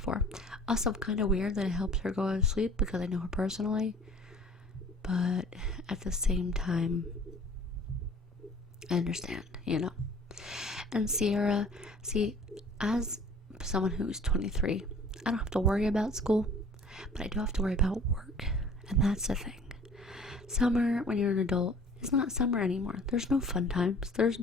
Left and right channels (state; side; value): normal; both; correlation 0.49